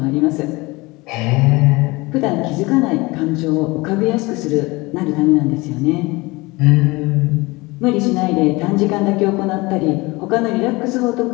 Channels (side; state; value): right; quieter; 23.1 dB